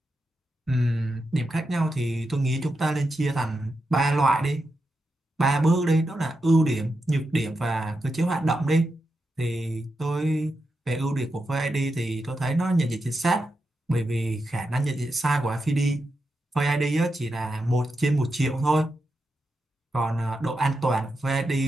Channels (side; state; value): both; normal; correlation 0.87